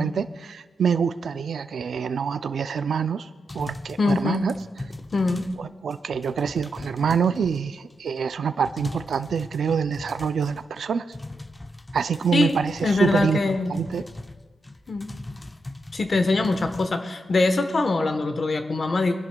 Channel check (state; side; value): normal; both; correlation 0.84